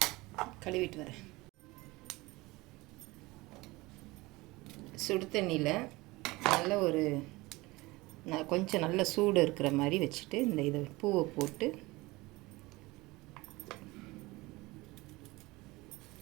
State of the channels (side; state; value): left; quieter; 21.6 dB